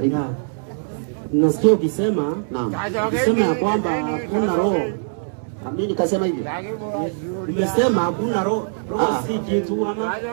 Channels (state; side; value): silent; left; 64 dB below the other